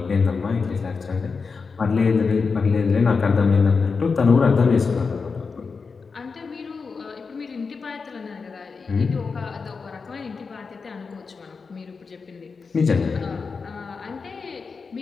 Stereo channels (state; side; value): quieter; right; 4.9 dB